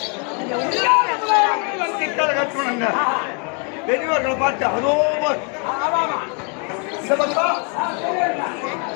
கட்டணுங்க. பெரியவர்களை பார்த்து அதோ இந்த பக்கம்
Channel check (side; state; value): right; quieter; 37.3 dB